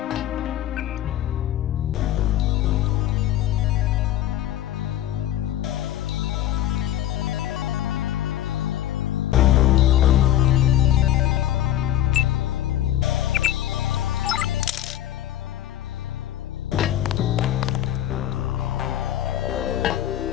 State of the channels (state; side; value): quieter; right; 12.3 dB